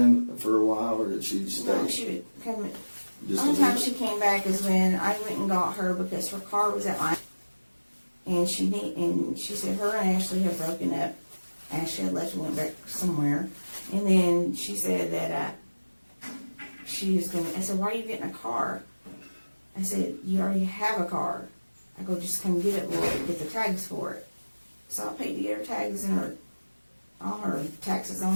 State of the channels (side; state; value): both; inverted; correlation -1.00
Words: for a while, or did she stay? No, she would come. The only Just time she came back is when I went and got her because her car was at my. And she said her and Ashley had broken up. Ashley had left and went back somewhere. And then she said that she was going to, I said, why are you getting a car? I said, you already have a car. I go, just come get it, we'll get the tags for it. So I paid to get her tags and all her taxes on